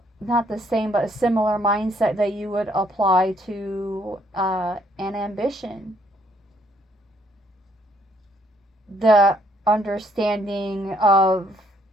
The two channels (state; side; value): normal; both; correlation 0.68